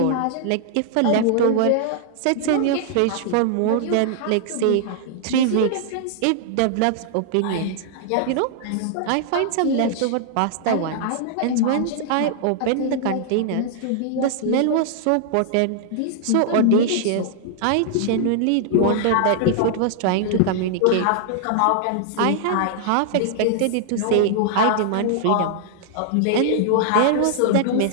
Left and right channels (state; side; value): different; both; correlation -0.01